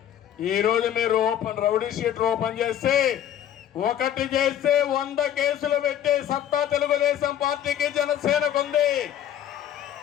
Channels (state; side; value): quieter; right; 10.6 dB